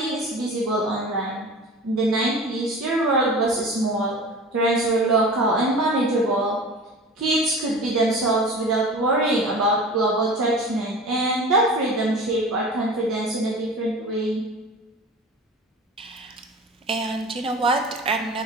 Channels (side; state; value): both; normal; correlation 0.36